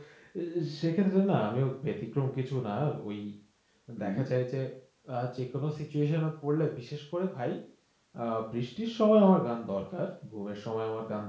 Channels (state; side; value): identical; both; correlation 1.00